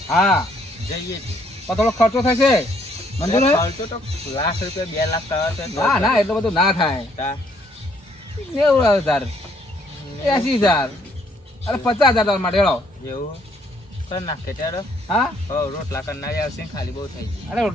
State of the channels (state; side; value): normal; both; correlation 0.67